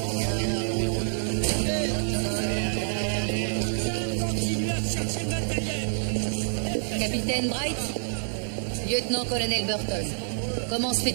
Continuez à chercher le matériel. Capitaine Bright, lieutenant-colonel Burton, comment se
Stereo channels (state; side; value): silent; left; digital silence